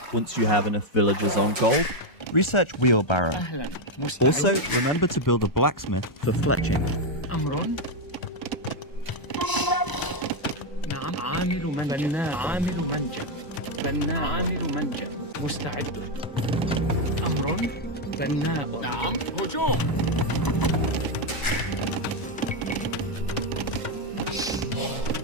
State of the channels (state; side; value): late; right; 1.0 ms